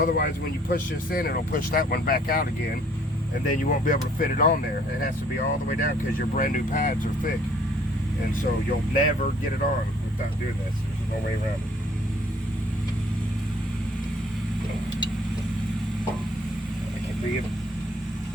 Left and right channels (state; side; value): normal; both; correlation 0.59